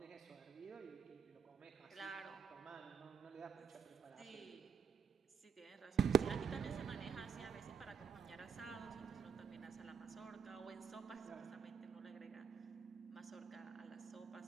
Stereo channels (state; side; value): quieter; left; 6.7 dB